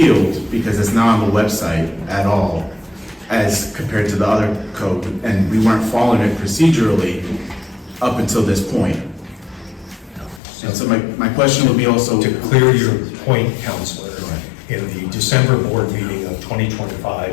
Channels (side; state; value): right; drops out; at 10.4 s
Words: because it's not on the website at all as compared to the other code, and we weren't following it procedurally up until this point. And so my question would be also... To clear your point, Counselor, in the December board meeting of